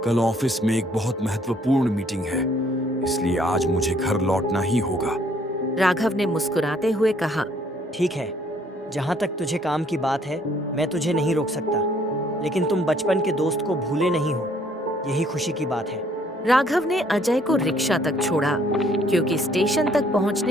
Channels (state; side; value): normal; both; correlation 0.64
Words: कल ऑफिस में एक बहुत महत्वपूर्ण मीटिंग है, इसलिए आज मुझे घर लौटना ही होगा। राघव ने मुस्कुराते हुए कहा, ठीक है, जहाँ तक तुझे काम की बात है मैं तुझे नहीं रोक सकता, लेकिन तुम बचपन के दोस्त को भूले नहीं हो, यही खुशी की बात है। राघव ने अजय को रिक्शा तक छोड़ा क्योंकि स्टेशन तक